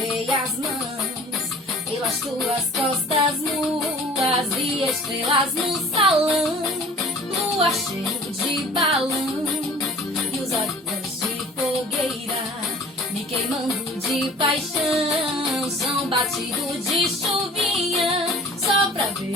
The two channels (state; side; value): normal; both; correlation 0.47